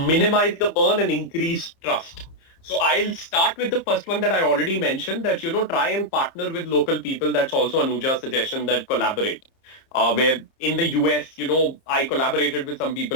the burn and increase trust. So I'll start with the first one that I already mentioned that, try and partner with local people. That's also Anuja's suggestion that collaborate. Where in the US, I collaborated with some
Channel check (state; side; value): late; right; 30 ms